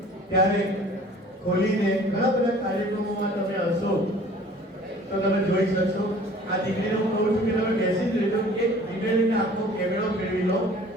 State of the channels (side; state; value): both; normal; correlation 0.49